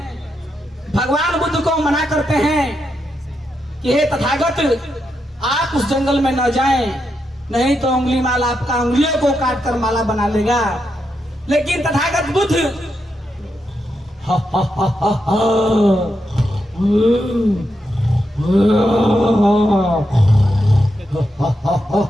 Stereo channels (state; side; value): normal; both; correlation 0.84